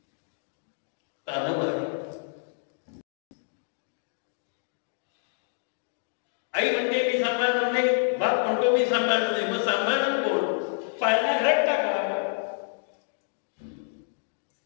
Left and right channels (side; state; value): right; silent; digital silence